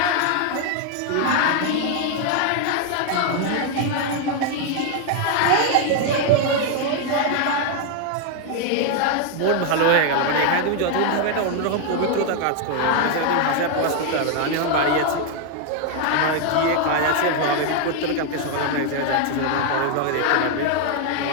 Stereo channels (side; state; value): both; different; correlation 0.00